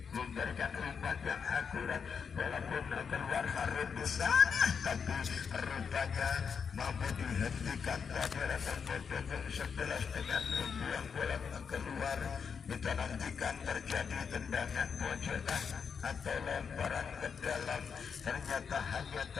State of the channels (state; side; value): quieter; right; 6.4 dB